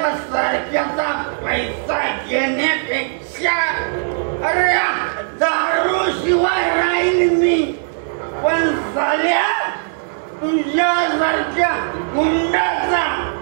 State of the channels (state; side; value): silent; left; 61 dB below the other